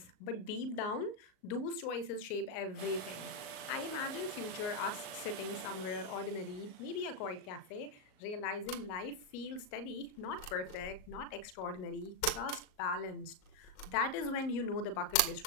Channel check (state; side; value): late; right; 38 ms